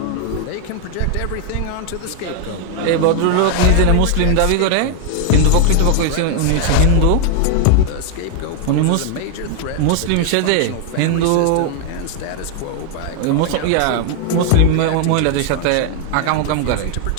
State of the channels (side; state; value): both; different; correlation 0.00